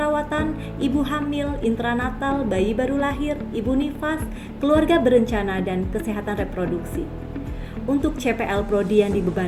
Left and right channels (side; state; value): both; identical; correlation 1.00